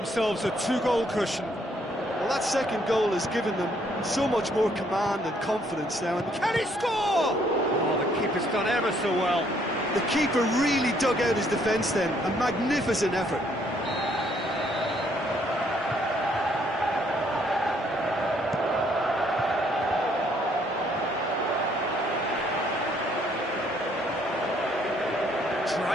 a 2-goal cushion. Well, that second goal has given them so much more command and confidence now. And can he score? Oh, the keeper's done ever so well. The keeper really dug out his defence then. A magnificent effort.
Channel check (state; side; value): normal; both; correlation 0.67